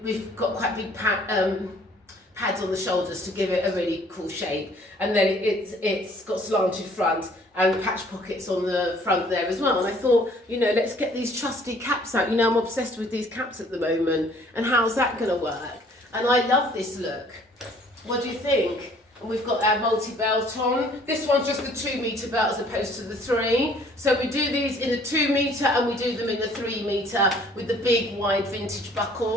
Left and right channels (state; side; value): normal; both; correlation 0.58